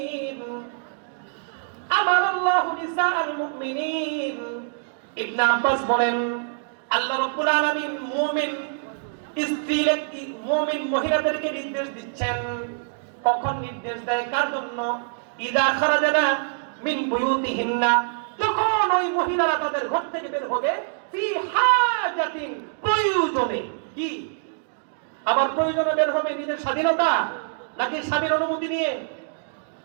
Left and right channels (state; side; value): silent; left; digital silence